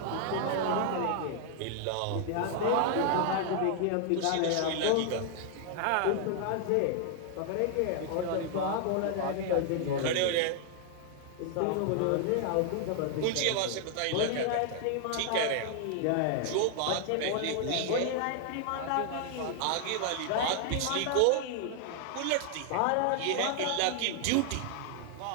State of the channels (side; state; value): both; different; correlation 0.00